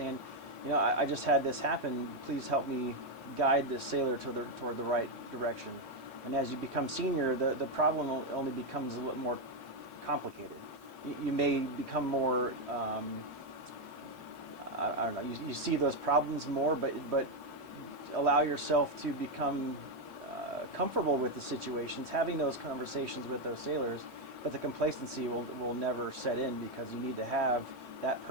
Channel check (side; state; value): left; late; 1.7 ms